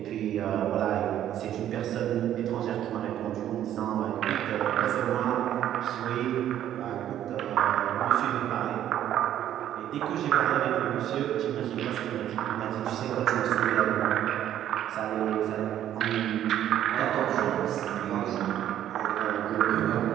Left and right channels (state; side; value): quieter; left; 11.3 dB